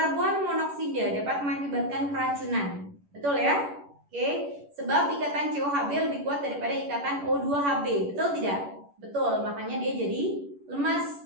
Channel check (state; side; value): late; left; 11 ms